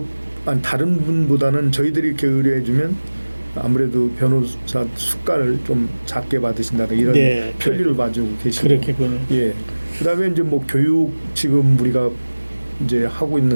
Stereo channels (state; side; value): inverted; both; correlation -1.00